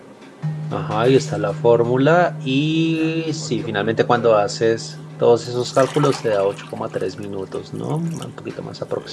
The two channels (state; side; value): identical; both; correlation 1.00